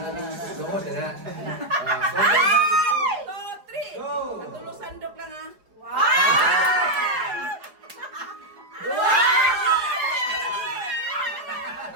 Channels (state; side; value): late; left; 4.8 ms